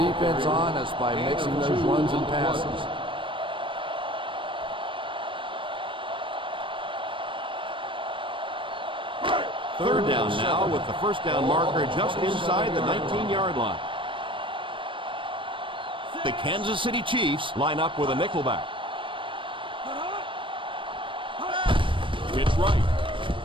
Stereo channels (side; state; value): left; late; 0.25 ms